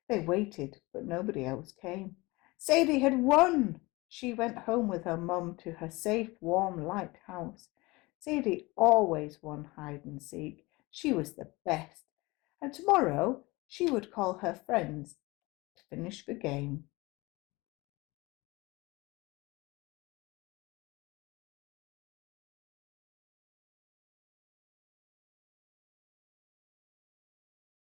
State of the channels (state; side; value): quieter; right; 22.9 dB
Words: They waited, but nobody else came. Sadie had won! She went home with her mum to her safe, warm, light house. Sadie always won hide and seek. She was the best. And tomorrow she would call her friends to finish the game.